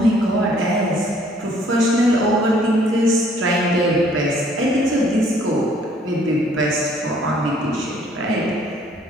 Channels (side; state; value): both; normal; correlation 0.61